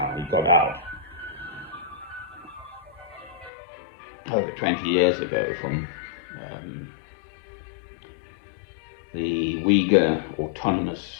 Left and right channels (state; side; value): drops out; right; at 3.5 s